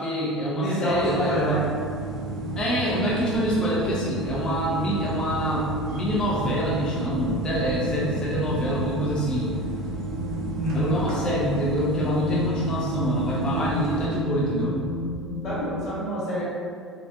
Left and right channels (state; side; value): normal; both; correlation 0.32